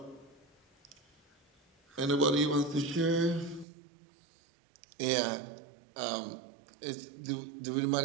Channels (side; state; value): left; drops out; at 3.7 s